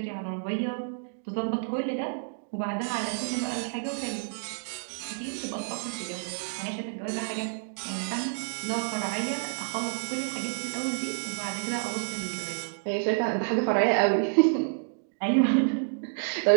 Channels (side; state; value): left; silent; digital silence